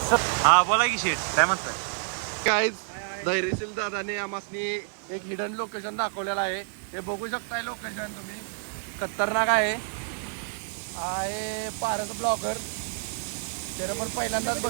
हा बोला की शेठ काय म्हणताय. काय धैर्यशील दादाने आम्हासनी एक हिडन लोकेशन दाखवलेलं आहे. हे बघू शकताय लोकेशन तुम्ही. खतरनाक आहे पारस ब्लॉगर. त्याला पण पहिल्यांदाच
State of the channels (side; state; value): left; silent; 59 dB below the other